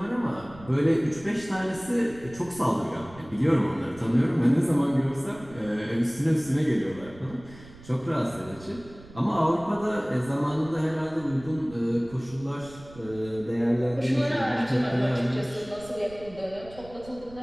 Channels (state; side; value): noise; right; rumble, 19 dB below the sound